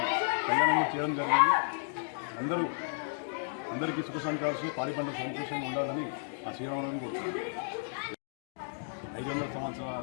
కళ్యాణం చేయడం జరిగింది. అందరికీ సుఖ సంతోషాలు, పాడి పంట సంతోషంగా ఉండాలని ఆ శ్రీరామనవమి కోరుతున్నాను. 500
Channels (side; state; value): right; silent; digital silence